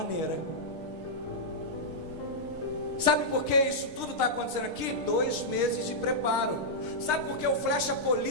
Sabe por que isso tudo está acontecendo aqui? 2 meses de preparo. Sabe por que o Flecha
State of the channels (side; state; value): left; late; 6.5 ms